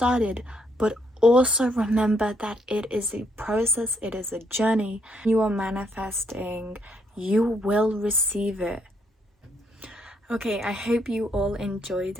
but also remember that it is a process, it is a journey. You are manifesting, you will receive it. Okay, I hope you all enjoyed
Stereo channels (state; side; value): normal; both; correlation 0.72